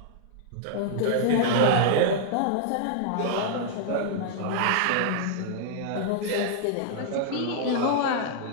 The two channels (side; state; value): both; different; correlation -0.01